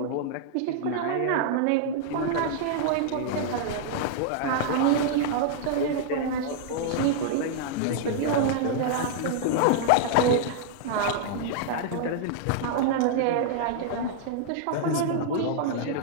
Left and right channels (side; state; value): both; different; correlation -0.01